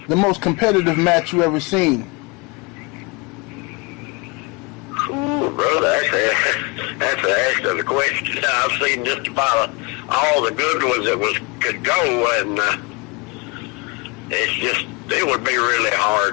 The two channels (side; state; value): right; quieter; 28.6 dB